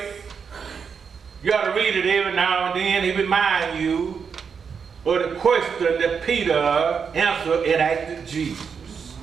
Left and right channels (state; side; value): quieter; left; 6.3 dB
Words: you got to read it every now and then. It reminds you of the question that Peter answered and asked Jesus.